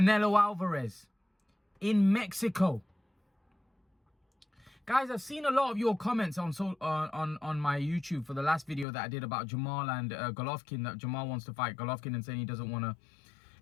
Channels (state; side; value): drops out; right; at 8.8 s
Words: Alvarez in Mexico. Guys, I've seen a lot of your comments on my YouTube for the last video that I did about Jermall and Golovkin, that Jermall wants to fight Golovkin and saying he doesn't want to